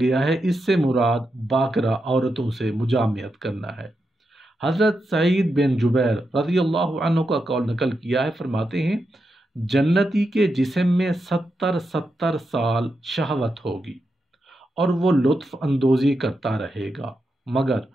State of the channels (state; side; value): normal; both; correlation 0.86